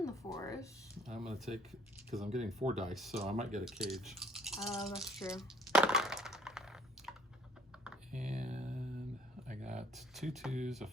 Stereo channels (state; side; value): normal; both; correlation 0.60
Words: the forest. I'm gonna take because I'm getting 4 dice, so I might get a cage. Oh, that's true. And I got 2 2s, a